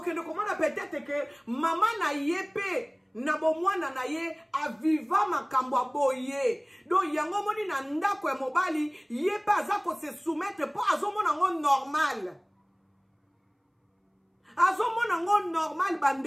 kende komona peut-être que mama na ye pe na bomwana na ye aviva makambo aboye donc yango moni na ndako ya mobali ye pe aza ko se soumettre po azomona ngo normal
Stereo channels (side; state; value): both; identical; correlation 1.00